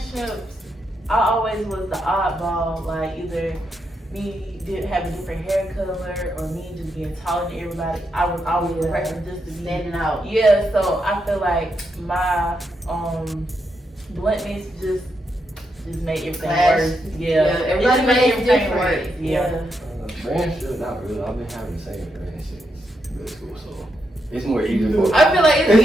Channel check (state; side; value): normal; both; correlation 0.82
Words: I always was the oddball. Like, either me did have a different hair color or me just being taller than everybody. I was always the person just to be standing out. Yeah, so I feel like my bluntness just just made everything Clash. worse. Yeah, everybody it just makes everything different. worse. Yeah. Friendship, not really. I've been having the same friend since middle school, so it's more easy for. I feel like it's